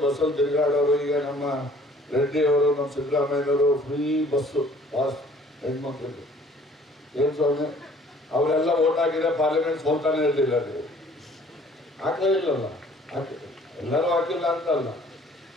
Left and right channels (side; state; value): both; normal; correlation 0.55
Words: ಬಸ್ಸಲ್ಲಿ ತಿರುಗಾಡೋರು, ಈಗ ನಮ್ಮ ರೆಡ್ಡಿಯವರು, ನಮ್ಮ ಸಿದ್ದರಾಮಯ್ಯನವರು ಫ್ರೀ ಬಸ್ಸು ಪಾಸ್ ಹೆಣ್ಮಕ್ಳಿಗೆ ಏನು ಸ್ವಾಮಿ, ಅವರೆಲ್ಲ ಓಟ್ ಹಾಕಿದ್ರೆ ಪಾರ್ಲಿಮೆಂಟ್ ಸೋಲ್ತಾನೆ ಇರಲಿಲ್ಲ. ನೀವು ಹಾಕಲೇ ಇಲ್ಲಲ್ಲ, ಎಲ್ಲರೂ ಹಾಕಿಲ್ಲ ಅಂತಲ್ಲ.